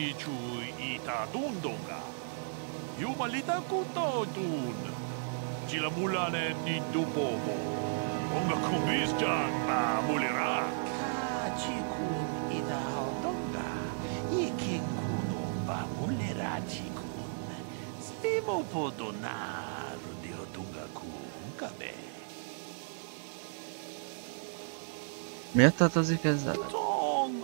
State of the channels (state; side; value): silent; left; digital silence